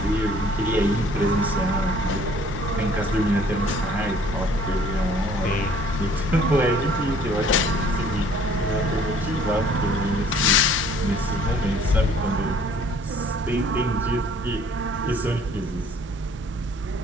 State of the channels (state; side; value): normal; both; correlation 0.56